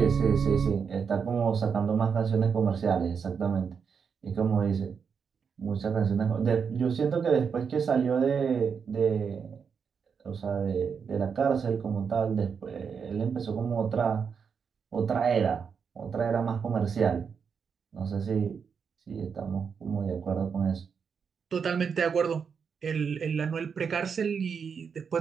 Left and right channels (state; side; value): quieter; left; 6.3 dB